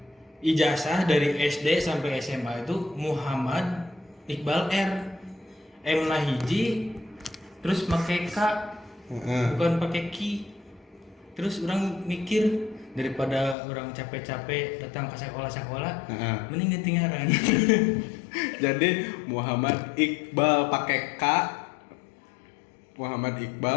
ijazah dari SD sampai SMA itu Muhammad Iqbal R. M na hiji terus pakai K, bukan pakai Ki. Terus orang mikir daripada orang capek-capek datang ke sekolah-sekolah, mending ganti ngaran. Jadi Muhammad Iqbal pakai K, Muhammad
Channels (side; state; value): right; drops out; at 13.6 s